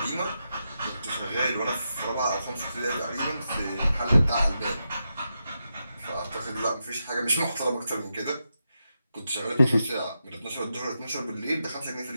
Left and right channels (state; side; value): inverted; both; correlation -0.87